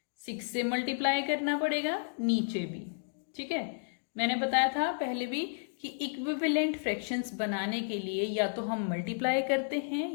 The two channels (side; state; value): right; silent; digital silence